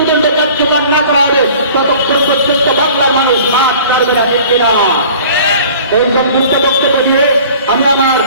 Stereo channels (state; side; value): inverted; both; correlation -0.47